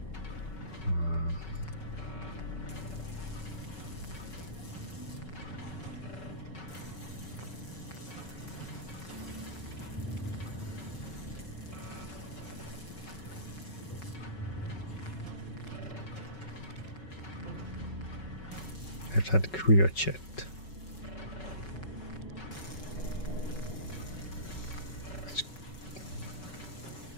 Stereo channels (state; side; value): late; right; 5.3 ms